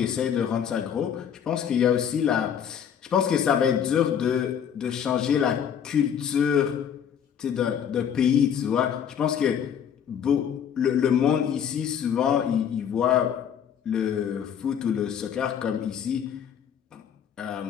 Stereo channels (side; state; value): right; quieter; 8.4 dB